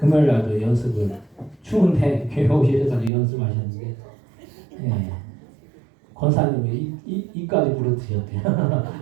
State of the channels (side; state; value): left; drops out; at 3.1 s